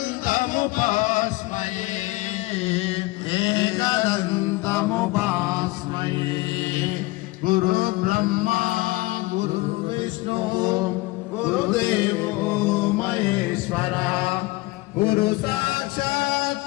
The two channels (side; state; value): right; quieter; 21.6 dB